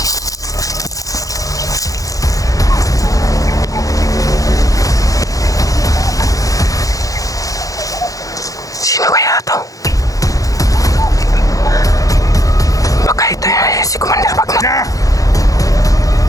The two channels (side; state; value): right; late; 0.17 ms